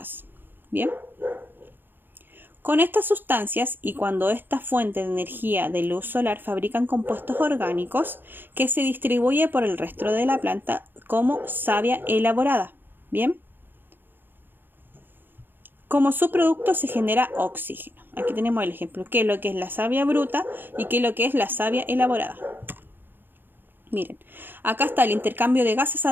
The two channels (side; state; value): left; late; 0.096 ms